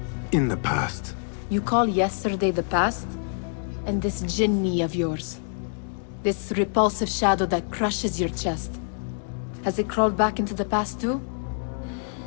in the past. You call yesterday the past? And this jinni of yours, this repulsive shadow that crushes your chest, has it crawled back into the past too?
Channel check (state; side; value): silent; right; digital silence